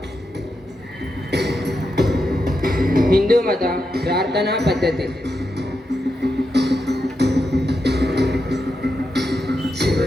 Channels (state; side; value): normal; both; correlation 0.86